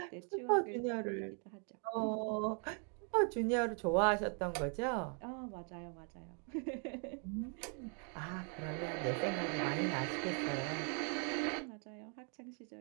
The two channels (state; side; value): quieter; left; 39.7 dB